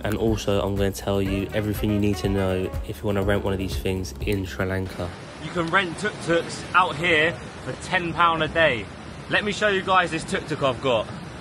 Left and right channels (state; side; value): identical; both; correlation 1.00